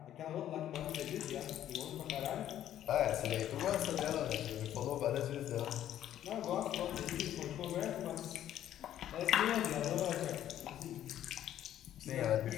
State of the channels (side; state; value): right; quieter; 11.6 dB